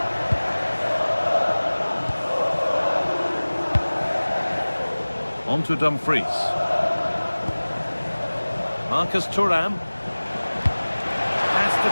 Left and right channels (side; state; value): both; inverted; correlation -1.00